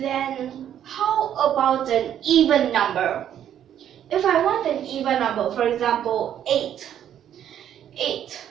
how about an even number? If I want an even number, for example, 8,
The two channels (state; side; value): quieter; left; 10.2 dB